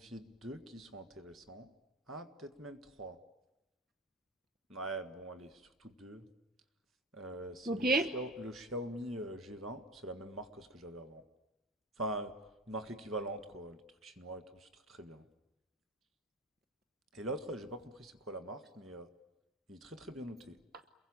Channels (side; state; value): both; normal; correlation 0.31